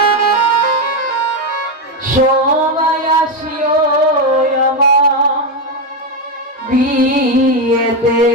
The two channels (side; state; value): both; normal; correlation 0.09